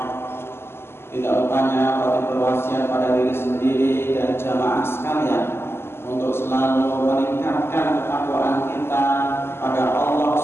Tidak lupanya kami berwasiat pada diri sendiri dan jamaah sekalian untuk selalu meningkatkan ketakwaan kita pada Allah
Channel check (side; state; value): right; late; 0.12 ms